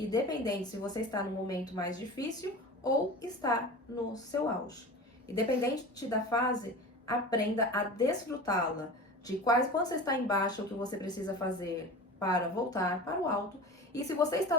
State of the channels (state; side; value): normal; both; correlation 0.34